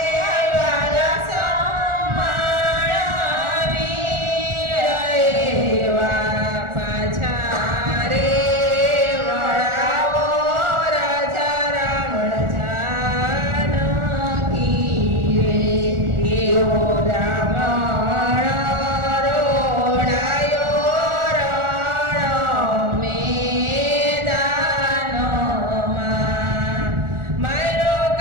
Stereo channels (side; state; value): left; late; 1.4 ms